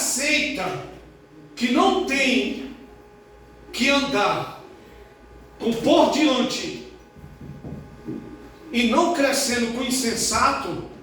que não tem que andar com por diante e não crescendo com o insensato,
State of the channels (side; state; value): both; identical; correlation 1.00